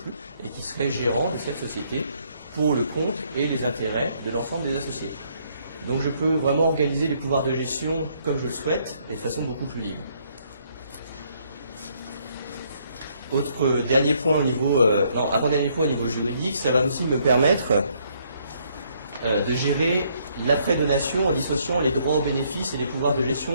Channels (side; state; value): both; inverted; correlation -0.69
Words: et qui serait gérant de cette société pour le compte et les intérêts de l'ensemble des associés. Donc je peux vraiment organiser les pouvoirs de gestion comme je le souhaite, et de façon beaucoup plus libre. Avant-dernier point au niveau juridique, ça va aussi me permettre de gérer l'après-donation en dissociant les droits aux bénéfices et les pouvoirs de